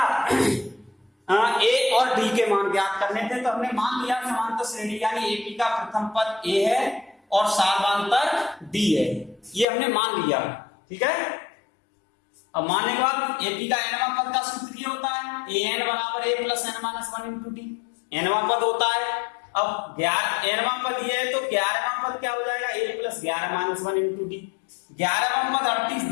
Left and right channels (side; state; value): right; drops out; at 9.7 s